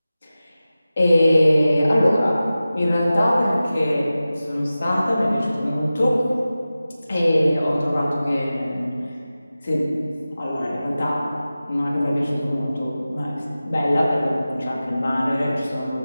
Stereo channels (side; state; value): both; inverted; correlation -0.95